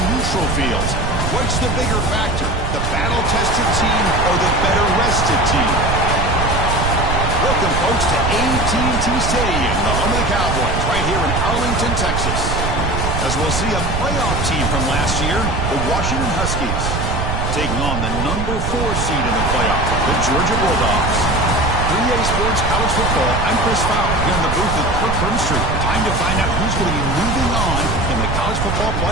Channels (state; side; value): noise; right; rumble, 1 dB below the sound